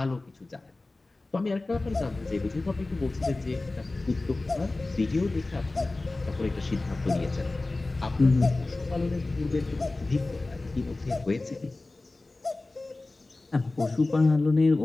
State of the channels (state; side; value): quieter; right; 3.1 dB